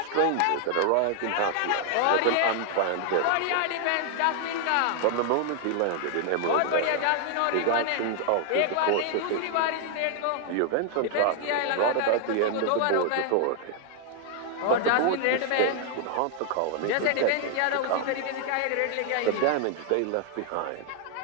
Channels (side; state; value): both; different; correlation 0.00